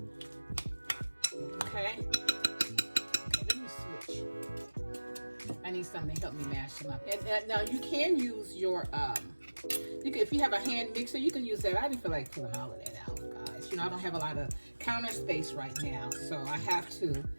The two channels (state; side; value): inverted; both; correlation -1.00